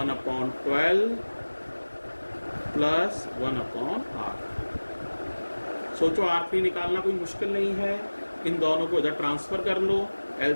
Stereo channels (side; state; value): both; inverted; correlation -1.00